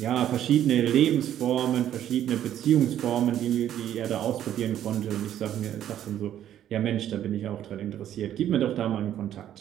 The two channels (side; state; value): left; quieter; 11.1 dB